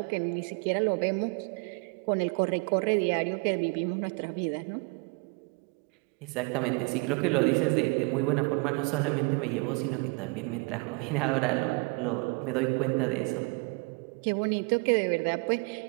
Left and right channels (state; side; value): quieter; left; 29.6 dB